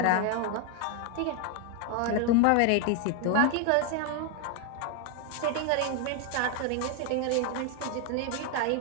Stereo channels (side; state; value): both; different; correlation 0.01